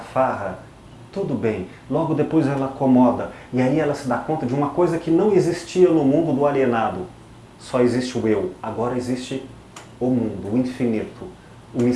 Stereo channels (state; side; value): identical; both; correlation 1.00